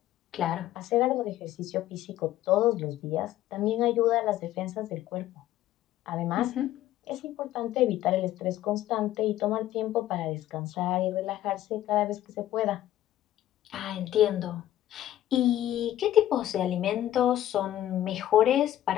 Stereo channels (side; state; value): right; quieter; 13.2 dB